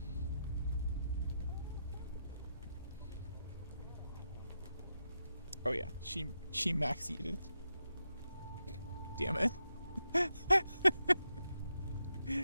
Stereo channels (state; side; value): inverted; both; correlation -0.85